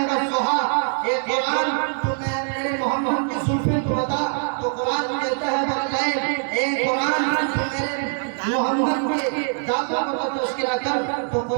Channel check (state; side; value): silent; left; 63 dB below the other